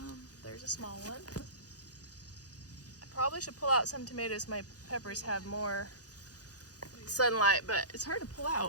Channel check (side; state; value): right; late; 0.67 ms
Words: There's a small one. I probably should pull out some tomatoes. My peppers have more sunlight, but it's hard to pull